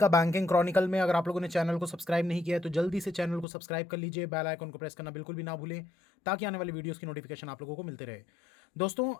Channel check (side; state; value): right; drops out; at 3.5 s